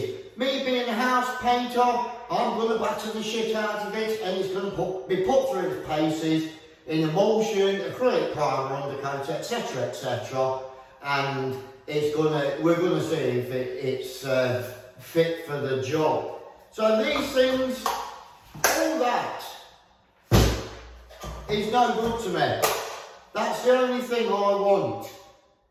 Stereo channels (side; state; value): both; identical; correlation 1.00